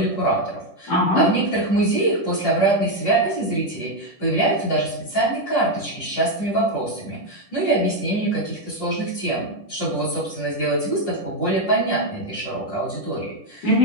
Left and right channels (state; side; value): late; right; 10 ms